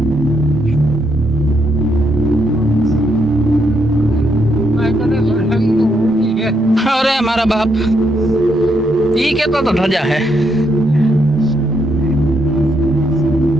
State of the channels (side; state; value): both; normal; correlation 0.77